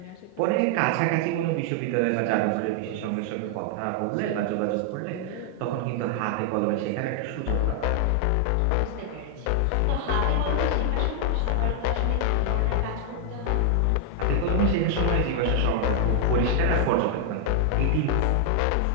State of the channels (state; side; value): different; both; correlation 0.00